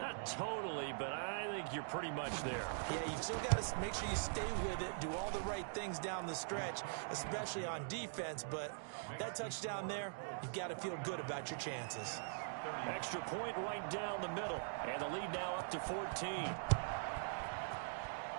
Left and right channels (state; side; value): silent; left; digital silence